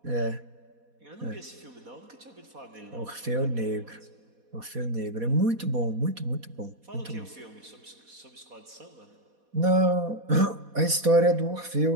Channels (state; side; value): late; left; 4.2 ms